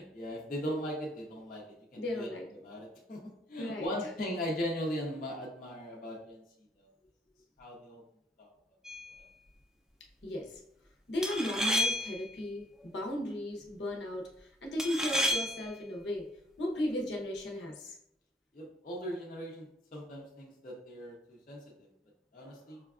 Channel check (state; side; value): normal; both; correlation 0.63